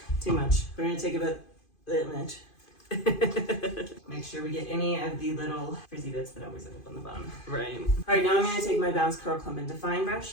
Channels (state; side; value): late; right; 2.5 ms